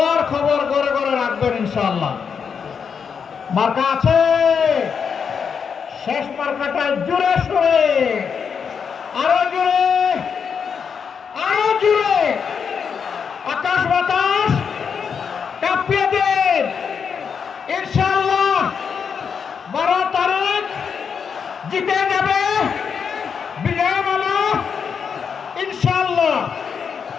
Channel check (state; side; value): quieter; right; 6.5 dB